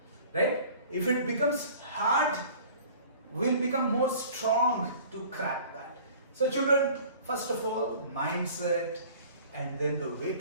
right? If it becomes hard, we'll become more strong to crack that. So children, first of all, mindset, and then the way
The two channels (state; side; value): inverted; both; correlation -0.47